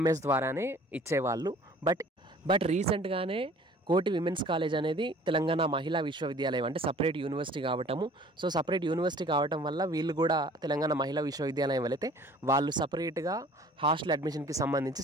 ద్వారానే ఇచ్చేవాళ్ళు. బట్ రీసెంట్గానే కోటి విమెన్స్ కాలేజ్ అనేది తెలంగాణ మహిళా విశ్వవిద్యాలయం అంటే సపరేట్ యూనివర్సిటీ కావటము. సో సపరేట్ యూనివర్సిటీ కావటం వల్ల వీళ్ళు కూడా తెలంగాణ మహిళా విశ్వవిద్యాలయం వెళితే వాళ్ళు సపరేట్గా హాస్టల్ అడ్మిషన్కి సంబంధించి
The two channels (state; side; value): normal; both; correlation 0.50